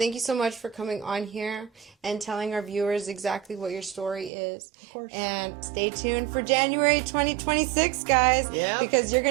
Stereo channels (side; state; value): left; drops out; at 4.3 s